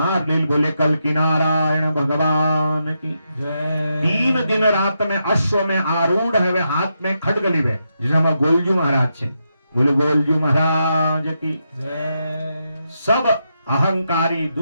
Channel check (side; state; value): both; inverted; correlation -0.84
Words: ले। बोले कल की नारायण भगवान की जय। 3 दिन रात में अश्व में आरूढ़ है, वे हाथ में खड्ग लिवे, जिसे हम गोलजू महाराज छे। बोले गोलजू महाराज की जय। सब अहंकारी